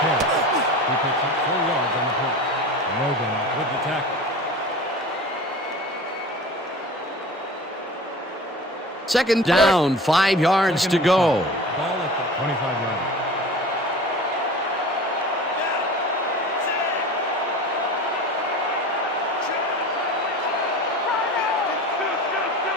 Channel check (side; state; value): both; normal; correlation 0.37